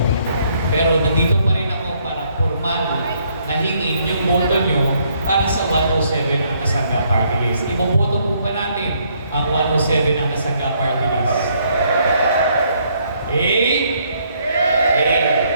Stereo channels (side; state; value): both; inverted; correlation -0.69